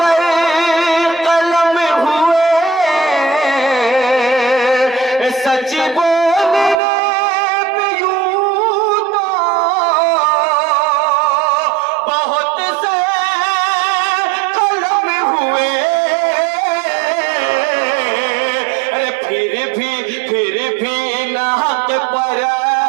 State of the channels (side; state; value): left; drops out; at 6.8 s